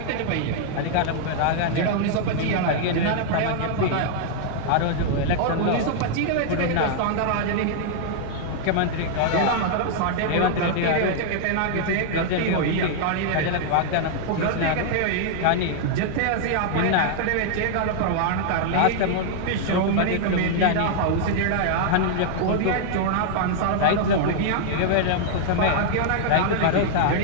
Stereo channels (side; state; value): both; different; correlation -0.01